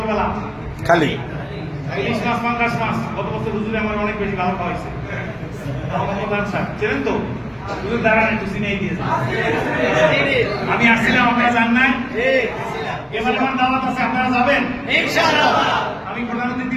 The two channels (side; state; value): both; identical; correlation 1.00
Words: খালি ইলিশ মাছ পাঙ্গাস মাছ গত বছর হুজুরে আমার অনেক বেশি ভালো খাওয়াইছে মোহাম্মদ স্যার চেনেন তো হুজুর দাঁড়ান একটু চিনেই দিয়েছে আমি আসছিলাম আপনারা জান নাই এবার আমার দাওয়াত আছে আপনারা যাবেন ইনশাআল্লাহ আমি